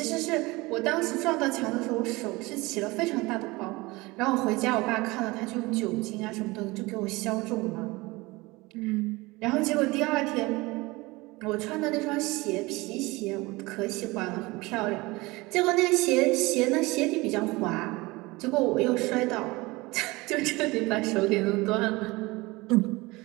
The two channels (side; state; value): left; quieter; 22.5 dB